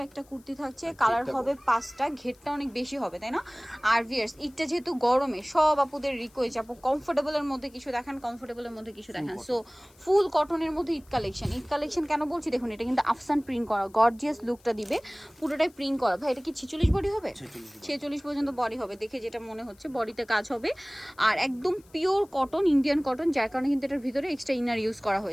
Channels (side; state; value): left; noise; hiss, 29 dB below the sound